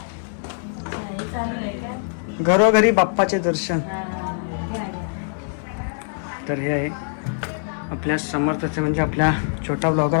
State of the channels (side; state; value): right; silent; digital silence